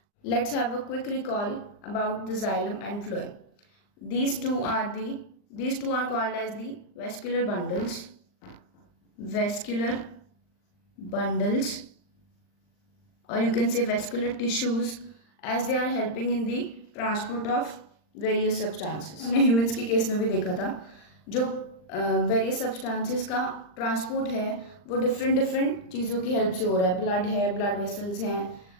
Let's have a quick recall about the xylem and phloem. These two are called as the vascular bundles, or you can say vascular tissues, as they are helping in the transport of various substances. हमने humans के case में भी देखा था जो various substances का transport है वो डिफरेंट चीज़ों की हेल्प से हो रहा है. ब्लड है, ब्लड वेसल्स हैं,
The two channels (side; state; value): right; late; 39 ms